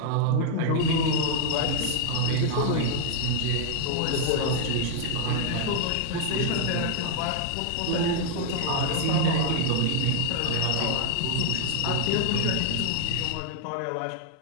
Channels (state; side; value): different; both; correlation 0.00